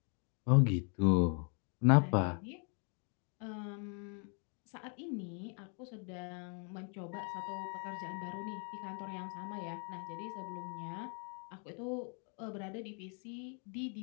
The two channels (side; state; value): right; quieter; 39.6 dB